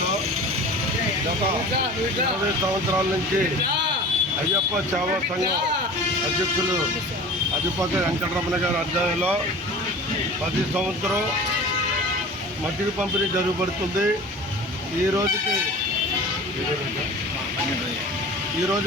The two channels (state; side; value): normal; both; correlation 0.39